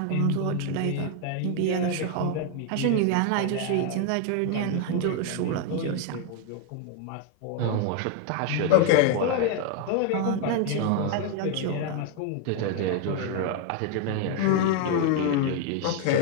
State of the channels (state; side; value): different; both; correlation 0.00